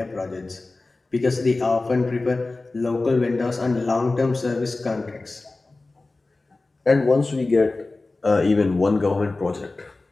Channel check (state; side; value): quieter; right; 3.3 dB